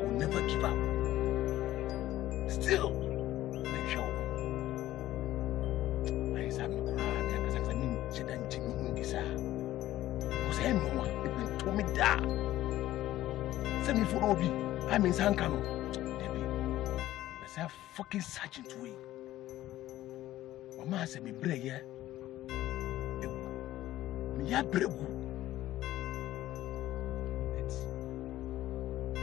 never give up. Still, make sure. I said, I'm crying because I need to then take me in this. Because everyone, it will tell me that. Send me for Obi. I'm in Sankano. Let's have fucking sergeant way. Mama said, me brave, yeah. Me ya brave.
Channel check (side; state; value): right; quieter; 14.5 dB